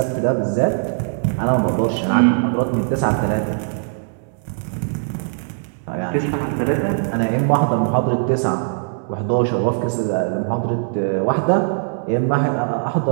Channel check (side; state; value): left; silent; digital silence